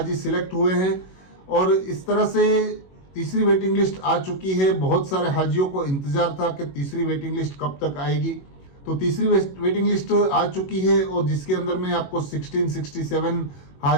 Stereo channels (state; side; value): late; right; 21 ms